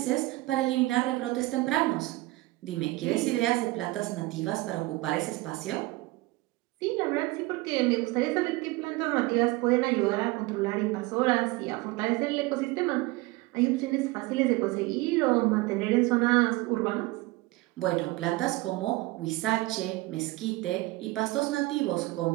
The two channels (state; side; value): quieter; left; 20.8 dB